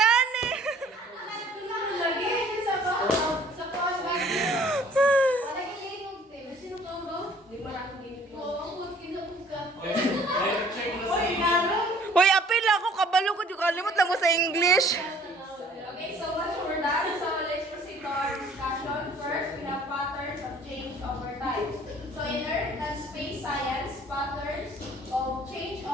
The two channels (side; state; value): both; normal; correlation 0.55